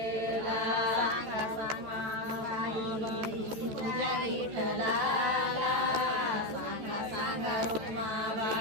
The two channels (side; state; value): left; late; 14 ms